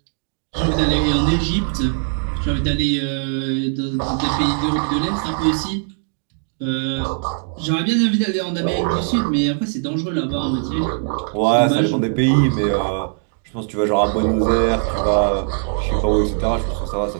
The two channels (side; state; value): left; silent; 58 dB below the other